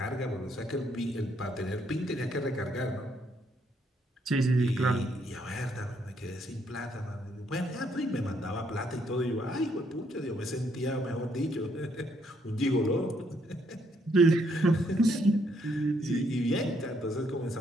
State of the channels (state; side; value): normal; both; correlation 0.72